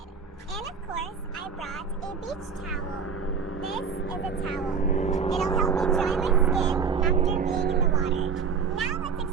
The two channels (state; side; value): quieter; left; 5.9 dB